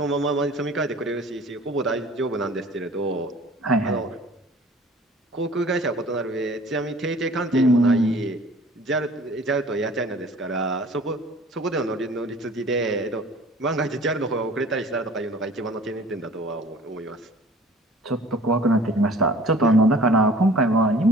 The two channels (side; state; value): both; normal; correlation 0.48